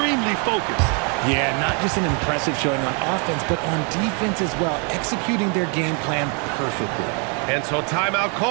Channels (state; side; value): quieter; left; 36.4 dB